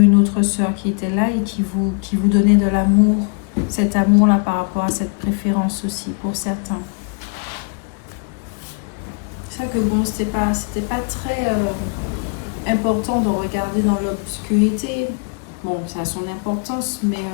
autre sœur qui était là et qui vous donnait de l'amour. Cet amour-là par rapport à cette préférence aussi pour certains. C'est vrai que bon, c'était pas très important de regarder dans l'obscurité. Bon, ça a son importance, mais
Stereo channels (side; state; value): right; quieter; 39.8 dB